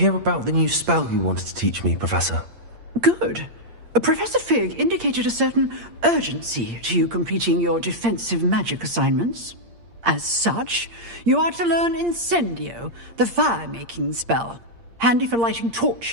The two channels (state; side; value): late; left; 8.6 ms